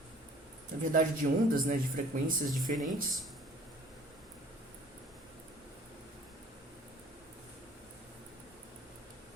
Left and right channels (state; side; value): normal; both; correlation 0.52